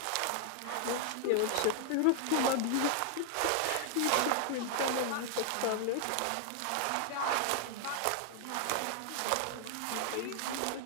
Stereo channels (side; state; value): both; different; correlation 0.00